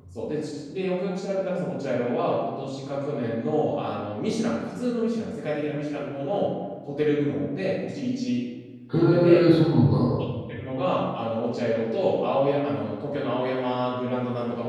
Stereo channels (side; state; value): both; identical; correlation 1.00